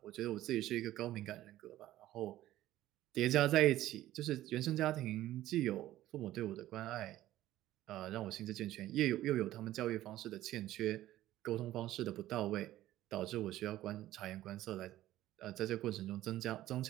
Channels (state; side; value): quieter; left; 14.5 dB